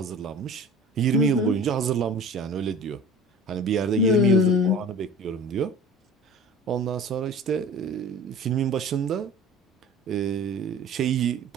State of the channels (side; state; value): both; normal; correlation 0.40